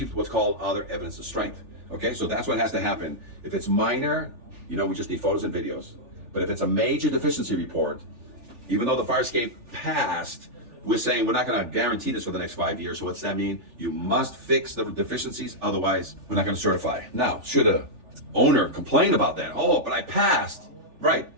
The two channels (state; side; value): late; left; 3.4 ms